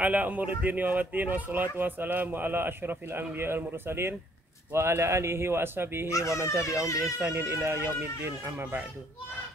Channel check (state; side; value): normal; both; correlation 0.63